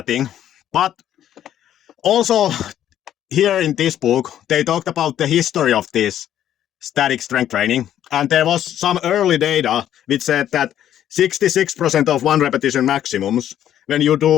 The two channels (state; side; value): quieter; right; 11.1 dB